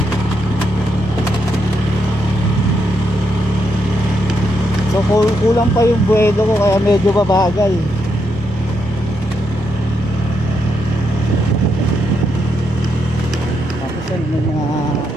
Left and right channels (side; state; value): both; normal; correlation 0.80